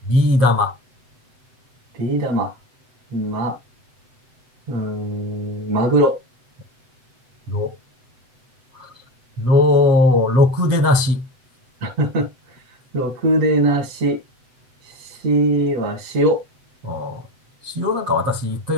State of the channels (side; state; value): left; late; 7.9 ms